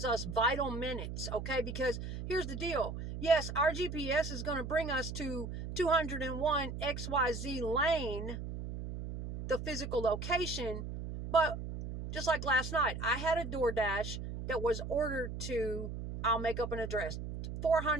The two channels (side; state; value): right; noise; hum, 6 dB below the sound